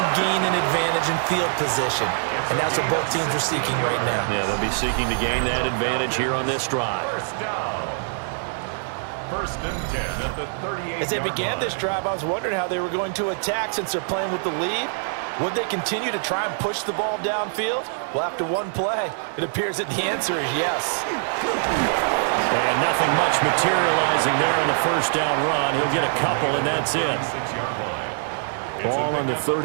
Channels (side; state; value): left; silent; digital silence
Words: gain an advantage in field position? And that's what both teams are seeking right now. Yeah, they'll be seeking to gain that advantage here on this drive. First and 10 at the 38. As they began this drive, I was wondering how they were going to attack since they're playing with the lead. Would they continue to try and push the ball downfield? Well, after one play, it appears that the answer is yes. And nothing much materializing there on the first down run. He'll get a couple, and that's it. Ball on the